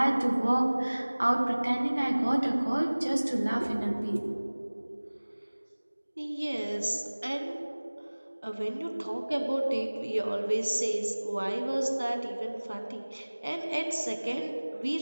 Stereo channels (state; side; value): inverted; both; correlation -1.00